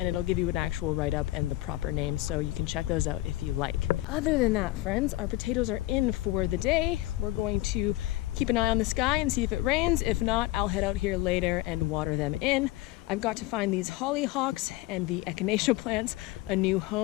it'll give you an actual write-up and the proper name, so you can check those out if you like. Other than that, friends, our potatoes are in for the day. We're going to keep an eye on the sky and see if it rains. If not, I'll head out here later and water them in. I've got to find these hollyhocks and the echinacea plants a new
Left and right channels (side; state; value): right; quieter; 17.4 dB